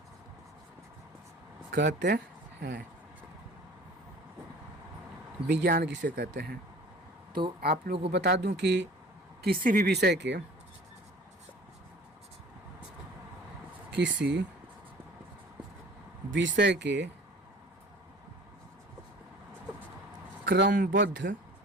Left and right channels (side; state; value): both; normal; correlation 0.46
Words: कहते हैं? विज्ञान किसे कहते हैं? तो आप लोगों को बता दूं कि किसी भी विषय के, किसी विषय के क्रमबद्ध